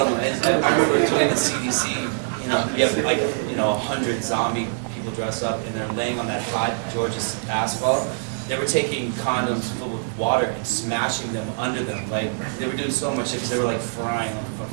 of them. And I remember doing the CDC, you know, you have like, 100 zombie people dressed up and they're laying on that hot Georgia asphalt. They were taking condoms filled with water and smashing them under them. Like, they were doing so much shit because they were like frying on the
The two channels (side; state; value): left; silent; 63 dB below the other